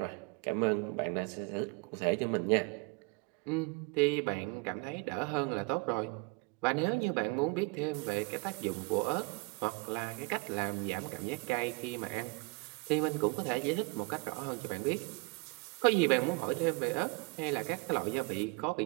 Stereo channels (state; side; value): quieter; left; 27.9 dB